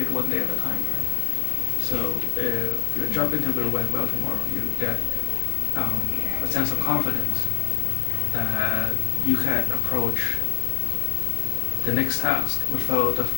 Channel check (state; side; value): silent; right; 62 dB below the other